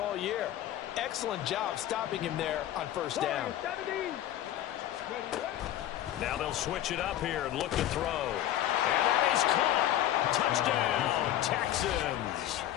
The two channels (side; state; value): right; quieter; 12.5 dB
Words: year. Excellent job stopping him there on first down. Now they'll switch it up here and look to throw. And that is caught. Touchdown, Texans.